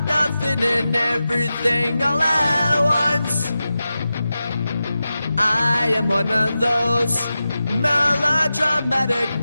nothing and everything all at once? I am one of those melodramatic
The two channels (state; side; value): inverted; both; correlation -0.92